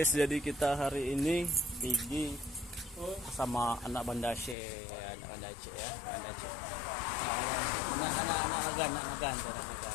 jadi kita hari ini pergi sama anak Bandace ya, anak Bandace ya, Bandace. Anak agan.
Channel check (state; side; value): drops out; right; at 4.5 s